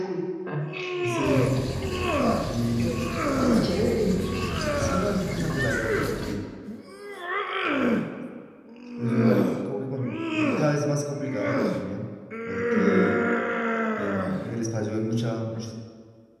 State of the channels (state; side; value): identical; both; correlation 1.00